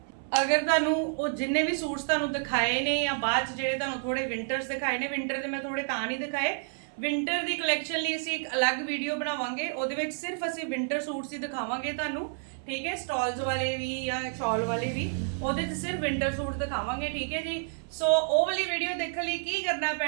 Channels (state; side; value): silent; left; 58 dB below the other